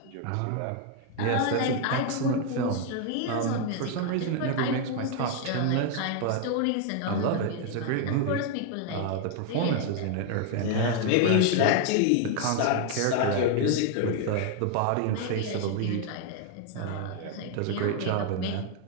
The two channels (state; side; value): different; both; correlation 0.00